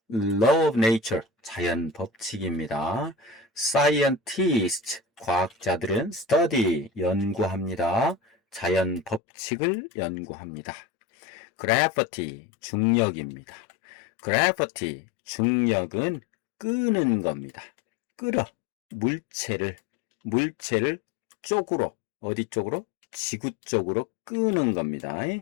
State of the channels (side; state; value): right; drops out; at 9.2 s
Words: Law of nature, 자연 법칙입니다. Scientists, 과학자들은 study, 연구합니다. 자연 법칙을 연구합니다. Gravity, 중력입니다. Gravity, 중력은 끄는 겁니다. 끌어, 물체를 쪽으로, 어디 쪽으로? 지구 쪽으로 끄는 겁니다.